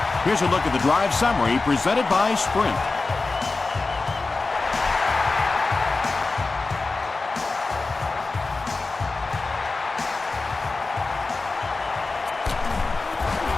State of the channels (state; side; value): quieter; right; 3.7 dB